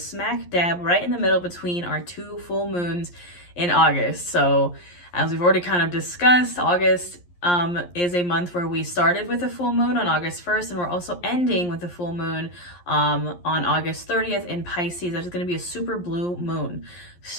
smack dab right in the middle between our two full moons in August. So as we've already kind of discussed, August is a month where we started with a full moon on August 1st, and we're also ending with a full moon on August 30th in Pisces. That is going to be a super blue moon.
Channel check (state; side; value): late; right; 11 ms